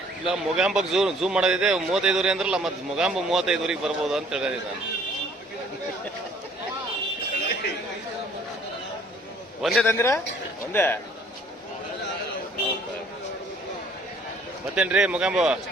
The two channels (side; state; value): both; normal; correlation 0.58